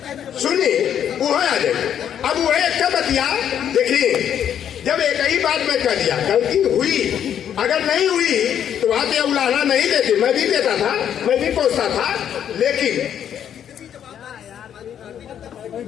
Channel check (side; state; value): right; quieter; 9.4 dB